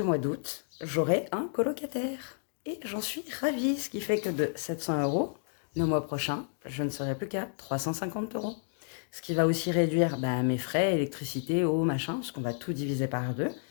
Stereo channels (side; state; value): right; silent; digital silence